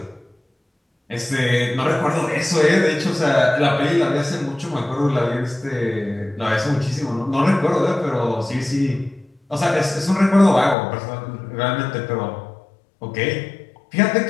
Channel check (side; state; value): right; drops out; at 10.8 s